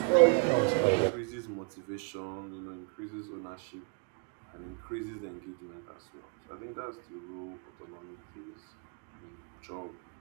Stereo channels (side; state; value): left; quieter; 34.8 dB